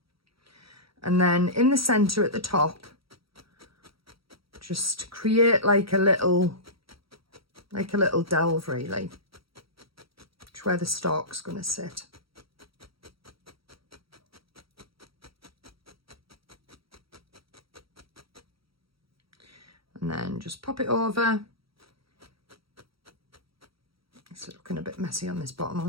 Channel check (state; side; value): late; left; 0.75 ms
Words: And then in the centre at the top, just create like a little delve really. Which where the stalk's going to sit. And then just pop it over. It's looking a bit messy on this bottom.